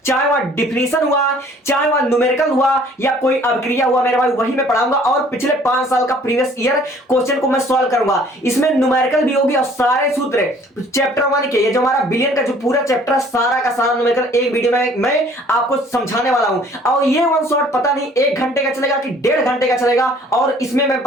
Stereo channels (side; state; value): both; normal; correlation 0.55